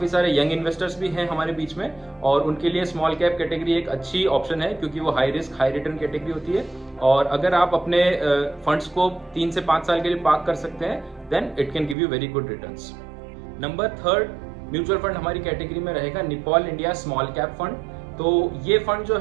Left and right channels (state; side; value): drops out; left; at 12.0 s